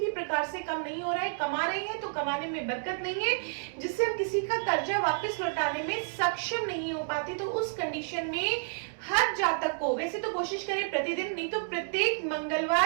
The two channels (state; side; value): silent; left; digital silence